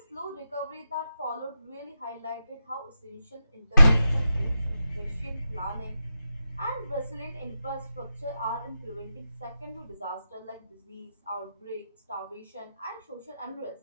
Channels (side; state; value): both; inverted; correlation -0.88